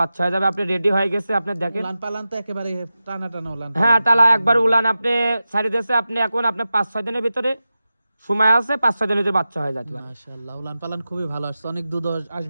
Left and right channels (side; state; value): both; inverted; correlation -0.93